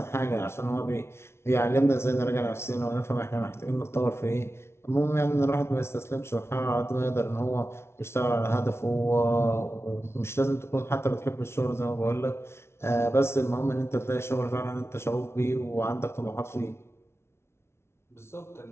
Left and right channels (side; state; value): right; late; 0.12 ms